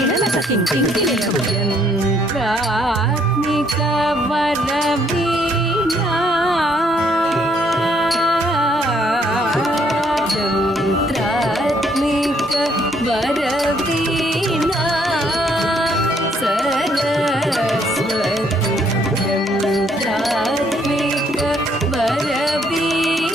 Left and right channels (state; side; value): normal; both; correlation 0.68